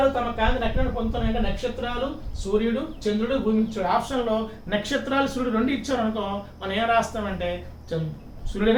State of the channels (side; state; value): both; identical; correlation 1.00